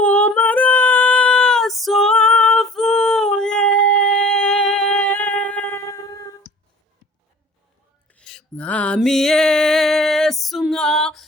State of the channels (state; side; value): normal; both; correlation 0.46